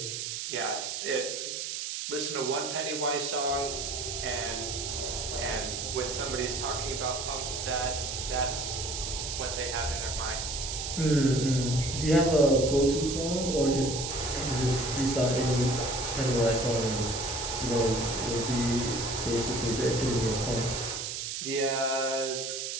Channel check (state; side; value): noise; right; hiss, 4 dB below the sound